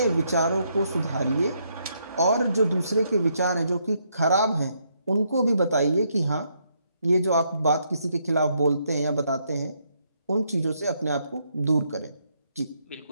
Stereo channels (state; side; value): inverted; both; correlation -0.75